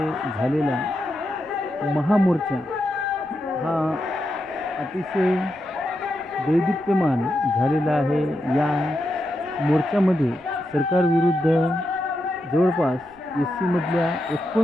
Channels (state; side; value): noise; right; rumble, 28 dB below the sound